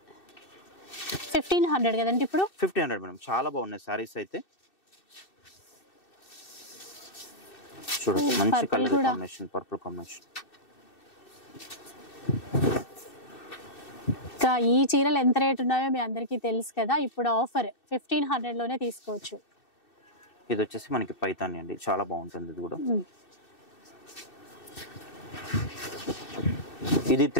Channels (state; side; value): late; right; 2.6 ms